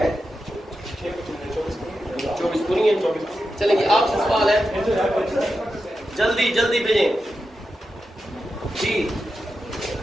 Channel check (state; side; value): normal; both; correlation 0.89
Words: है 24 पूरी है। चलेंगे, आपसे सवाल है, जल्दी जल्दी भेजें जी।